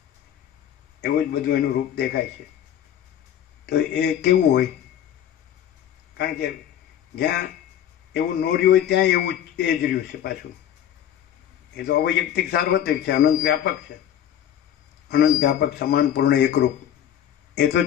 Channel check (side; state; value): right; quieter; 10.4 dB